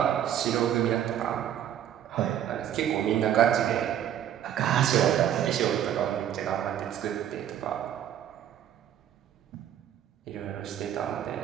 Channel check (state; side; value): quieter; left; 10.5 dB